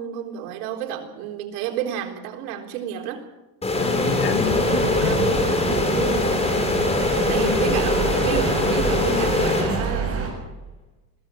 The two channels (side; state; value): both; normal; correlation 0.32